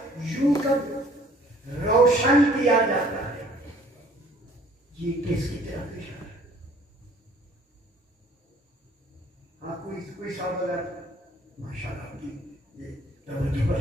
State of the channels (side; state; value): both; normal; correlation 0.56